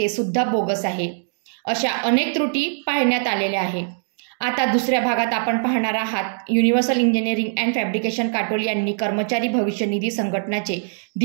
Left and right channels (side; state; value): left; silent; digital silence